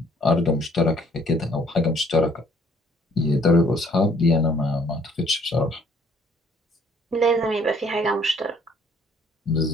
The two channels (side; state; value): both; normal; correlation 0.61